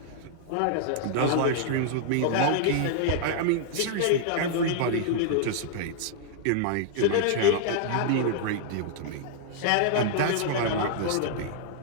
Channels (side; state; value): both; different; correlation -0.01